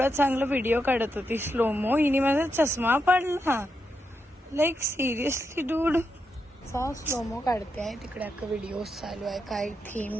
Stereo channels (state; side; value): normal; both; correlation 0.84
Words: चांगला व्हिडिओ काढत होती स्लोमो. हिने माझा चष्मा पाडला. Like seriously dude. स्लोमो काढते आहे तिकडे. अख्खा व्हिडिओ चालू आहे. काय थीम